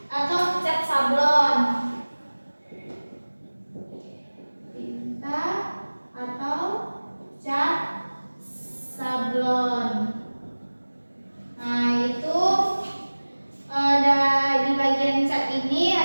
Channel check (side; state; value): both; inverted; correlation -1.00